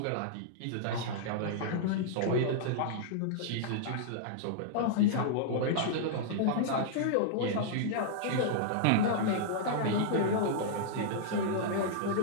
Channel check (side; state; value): both; different; correlation -0.01